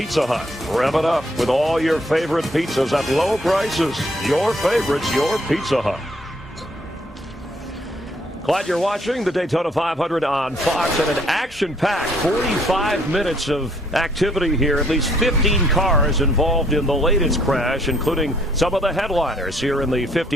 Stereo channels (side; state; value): both; normal; correlation 0.65